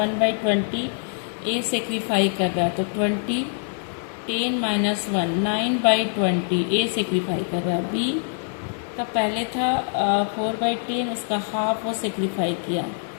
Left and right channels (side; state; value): right; silent; digital silence